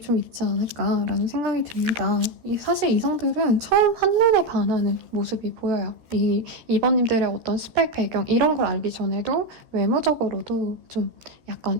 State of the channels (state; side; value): late; left; 14 ms